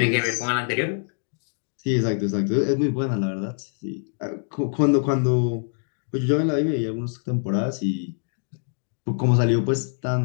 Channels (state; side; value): silent; right; digital silence